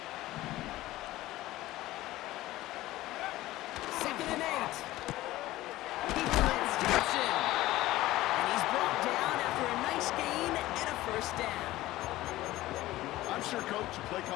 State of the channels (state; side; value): quieter; right; 16.7 dB